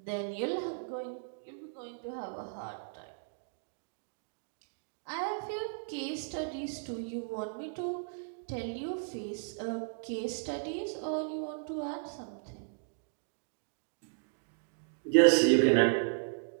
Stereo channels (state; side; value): silent; left; digital silence